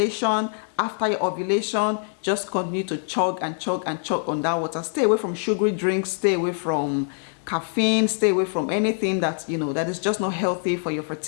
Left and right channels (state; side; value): silent; right; digital silence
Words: after your ovulation. Just continue to chug and chug and chug on that water. Stay away from sugary drinks, stay away from caffeine, stay away from anything that that is just not healthy for your